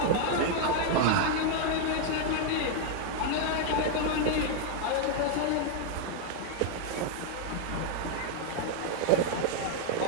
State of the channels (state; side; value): different; both; correlation 0.00